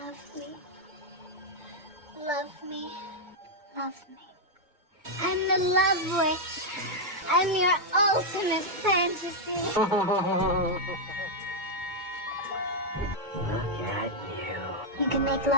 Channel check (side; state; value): left; late; 2.2 ms